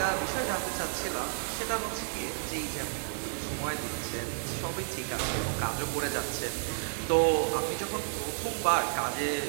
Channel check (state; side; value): silent; left; digital silence